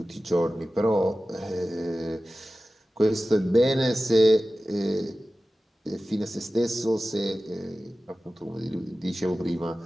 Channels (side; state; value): both; normal; correlation 0.95